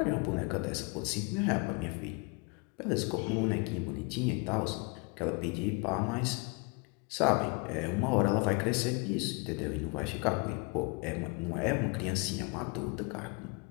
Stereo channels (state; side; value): quieter; right; 31.2 dB